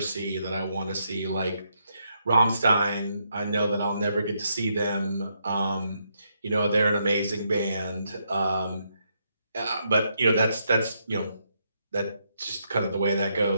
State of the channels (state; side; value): inverted; both; correlation -0.78